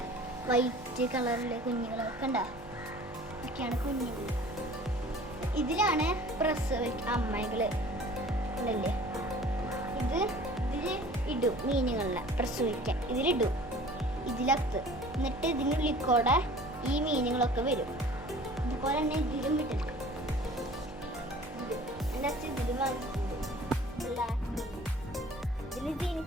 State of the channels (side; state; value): both; normal; correlation 0.47